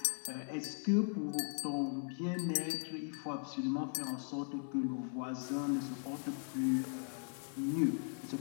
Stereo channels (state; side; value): silent; right; 52 dB below the other